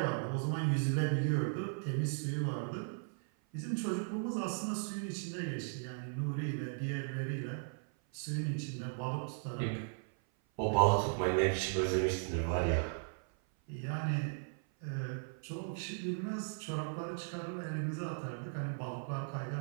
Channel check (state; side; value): silent; left; 53 dB below the other